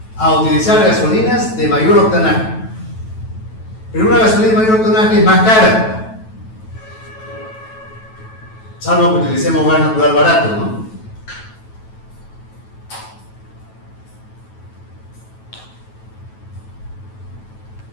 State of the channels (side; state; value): right; late; 9.2 ms